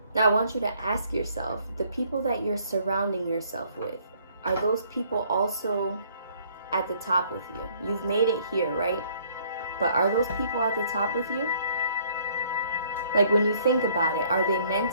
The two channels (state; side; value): inverted; both; correlation -0.62